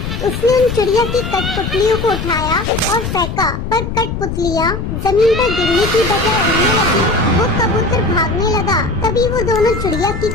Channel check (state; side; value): noise; left; rumble, 5 dB below the sound